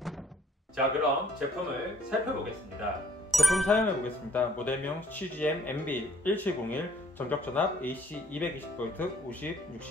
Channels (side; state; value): both; normal; correlation 0.60